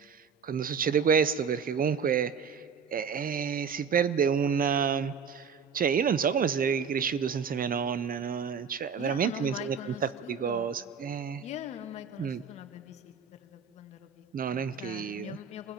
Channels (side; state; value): left; quieter; 6.2 dB